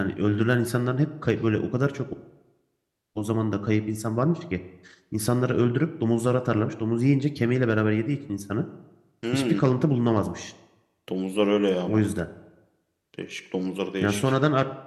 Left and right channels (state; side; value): identical; both; correlation 1.00